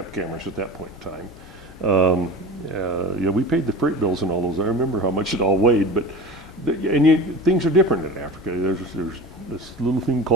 cameras at that point in time. Yeah, we paid the freight bills and all those. I remember how much it all weighed, but things are different in Africa. There's this little thing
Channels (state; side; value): normal; both; correlation 0.33